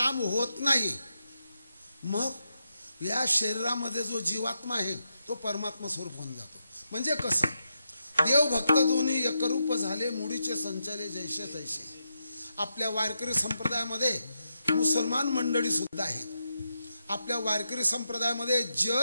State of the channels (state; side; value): inverted; both; correlation -0.85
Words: होत नाही. मग या शरीरामध्ये जो जीवात्मा आहे तो परमात्मा स्वरूप होऊन जातो. म्हणजे कसं देव भक्त दोन्ही एकरूप झाले, मुडीचे संचाले जैसे तैसे. आपल्या वारकरी संप्रदायामध्ये मुसलमान मंडळी सुद्धा आहेत. आपल्या वारकरी संप्रदायामध्ये